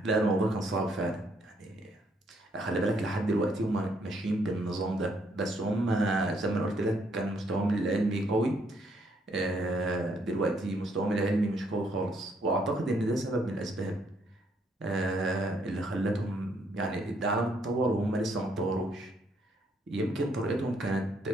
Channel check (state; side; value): normal; both; correlation 0.70